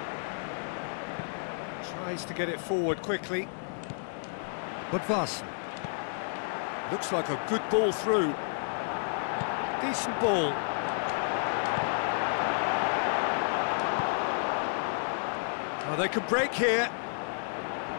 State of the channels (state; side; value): silent; right; digital silence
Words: Tries to get it forward quickly. Budvarsson. Looks like a good ball through. Decent ball. Oh, they can break here.